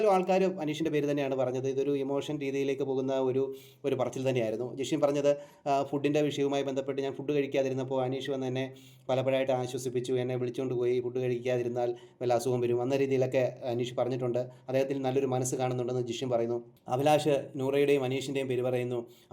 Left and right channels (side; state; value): both; identical; correlation 1.00